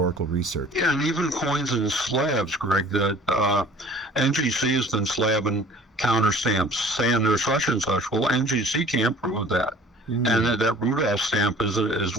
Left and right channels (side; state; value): both; normal; correlation 0.49